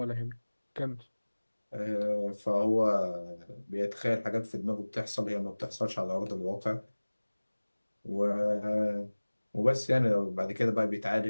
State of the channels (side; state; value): both; inverted; correlation -1.00